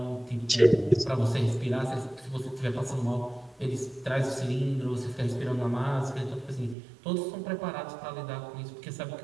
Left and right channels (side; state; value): left; drops out; at 6.8 s